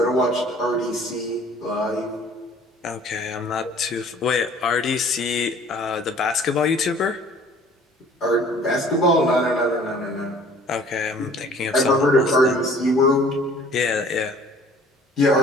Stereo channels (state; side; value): normal; both; correlation 0.52